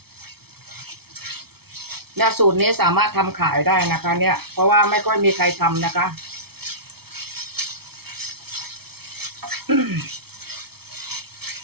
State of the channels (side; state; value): left; late; 0.96 ms